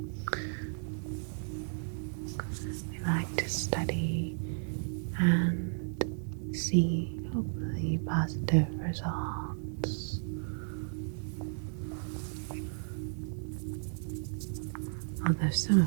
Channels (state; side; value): silent; left; digital silence